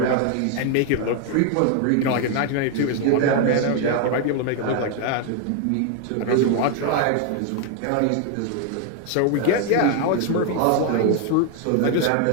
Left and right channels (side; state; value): both; different; correlation 0.00